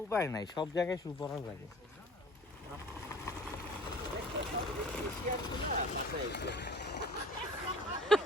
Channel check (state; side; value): normal; both; correlation 0.46